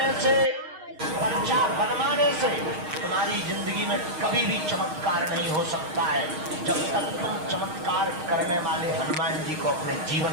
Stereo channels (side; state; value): left; late; 6.4 ms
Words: से, पर्चा बनवाने से तुम्हारी जिंदगी में कभी भी चमत्कार नहीं हो सकता है, जब तक तुम चमत्कार करने वाले हनुमान जी को अपने